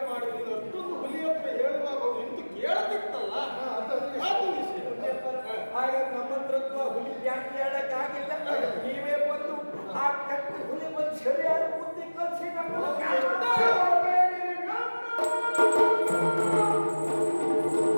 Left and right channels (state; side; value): inverted; both; correlation -1.00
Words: ಮಾಡಿದ್ದೀನಿ, ಅಷ್ಟೊಂದು ಹುಲಿ ಹತ್ರ ಹೇಳುವಾಗ ನಿಂತು ಕೇಳತಿತ್ತಲ್ಲ, ಅದು ವಿಷಯ. ಹಾಗೆ ನಮ್ಮಂತ್ರತ್ವ ಹುಲಿ ಜಾಸ್ತಿ ಆಡಕ್ಕಾಗಿಲ್ಲ. ನೀವೇ ಬಂದು ಆ ಕಟ್ಟು ಹುಲಿ ಬಂದು ಸರಿಯಾದ ಬುದ್ಧಿ ಕಲಿಸಿ ನಮ್ಮನ್ನು